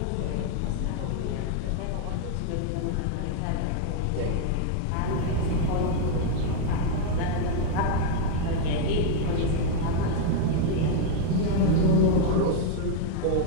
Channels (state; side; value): different; both; correlation 0.00